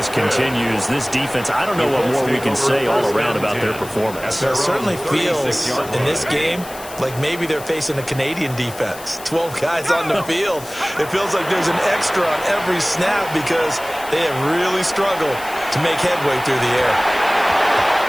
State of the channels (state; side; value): noise; left; hiss, 16 dB below the sound